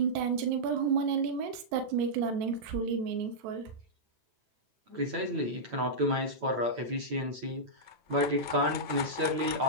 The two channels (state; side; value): late; left; 8.9 ms